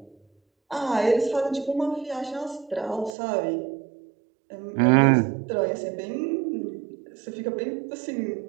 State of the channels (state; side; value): drops out; left; at 3.1 s